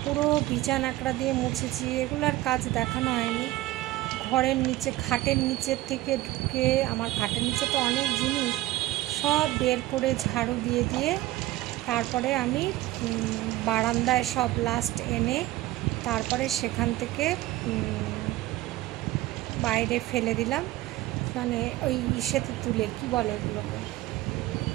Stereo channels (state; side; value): quieter; left; 16.9 dB